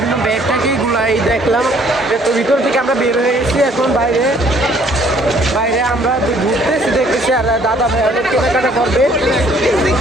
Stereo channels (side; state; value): both; normal; correlation 0.60